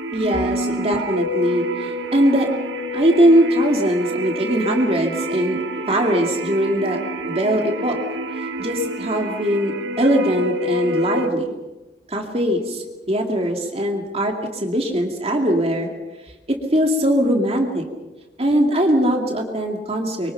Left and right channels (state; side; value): normal; both; correlation 0.58